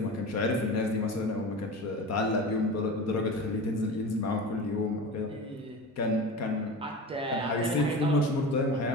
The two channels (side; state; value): both; normal; correlation 0.31